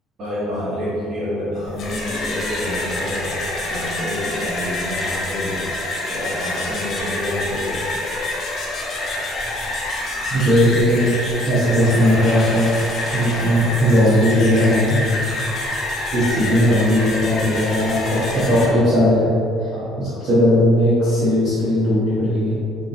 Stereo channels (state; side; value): normal; both; correlation 0.60